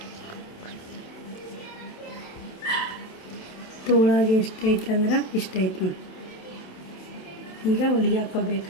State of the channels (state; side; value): late; right; 27 ms